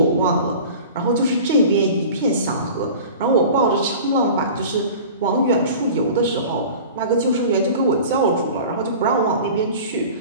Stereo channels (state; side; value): inverted; both; correlation -0.39